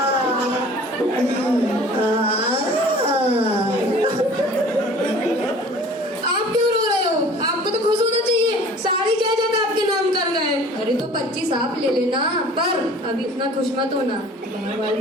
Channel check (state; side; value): normal; both; correlation 0.47